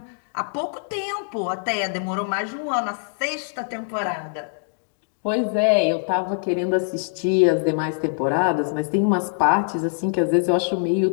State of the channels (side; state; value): right; silent; digital silence